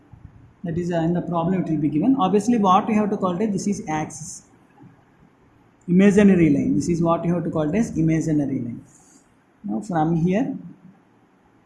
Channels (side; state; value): both; identical; correlation 1.00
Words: That is in the problem it will be given. Obviously what we have to call it, this is axis. Imaginary line. This is what you have to call it as imaginary line. Now from here,